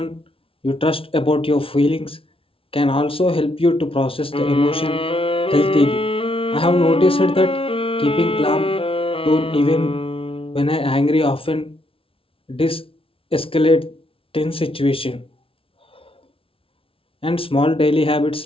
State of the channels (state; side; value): late; right; 0.26 ms